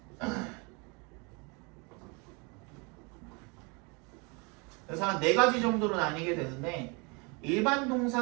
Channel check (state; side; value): quieter; left; 30.7 dB